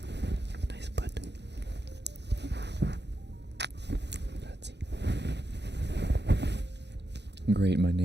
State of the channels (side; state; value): left; late; 0.50 ms